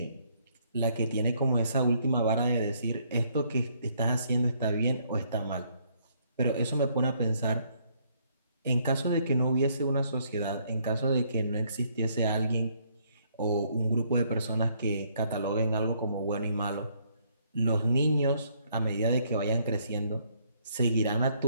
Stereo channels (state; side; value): inverted; both; correlation -0.68